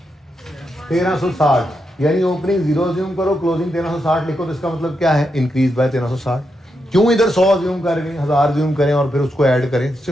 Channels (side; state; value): both; normal; correlation 0.84